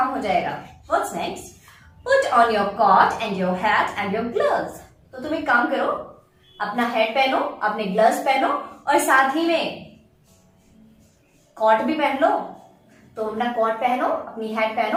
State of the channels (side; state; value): both; identical; correlation 1.00